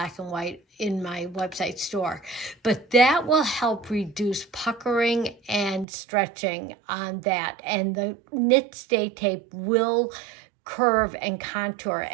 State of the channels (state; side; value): drops out; left; at 5.9 s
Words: and white in my website store. But that will help reduce puckering and stretching on that. And the knit stay tape will curve and contour